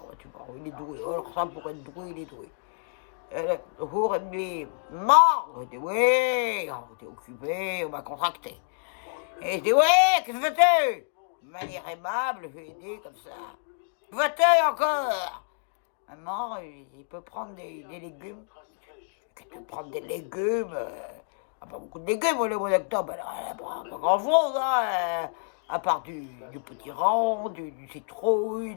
ouais, tu vois, il est doué. Alors ça, pour être doué, il est doué. Le jour, il me dit, mort. Je dis, oui, on était occupé, on m'a contracté. Et je dis, oui, qu'est-ce que fais-tu? De manière aimable, je lui ai dit comme ça. Va-t-il encore? Maman, il peut prendre des légumes. Il peut prendre des légumes. Pas beaucoup de légumes, le mois d'octobre. Pas grand-chose, hein. À part du petit rang, du citrouille,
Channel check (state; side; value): silent; right; digital silence